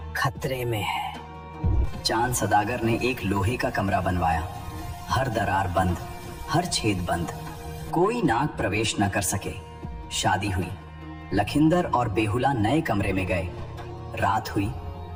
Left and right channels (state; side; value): identical; both; correlation 1.00